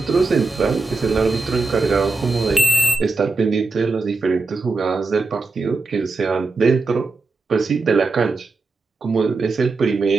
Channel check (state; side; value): quieter; left; 3.8 dB